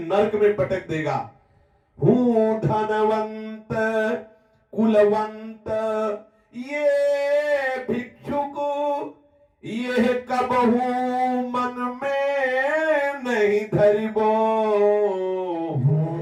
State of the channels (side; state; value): both; identical; correlation 1.00